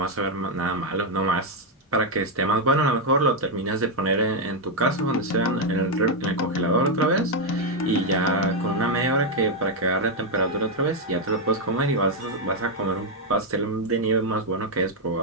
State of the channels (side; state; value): both; normal; correlation 0.01